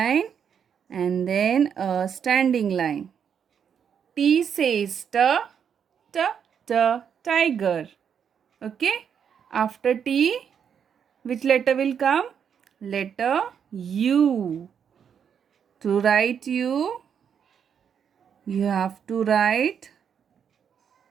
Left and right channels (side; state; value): left; quieter; 7.7 dB